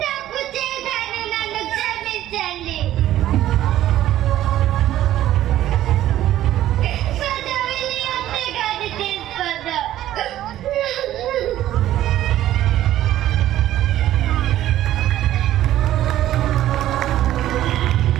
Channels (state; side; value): quieter; left; 13.3 dB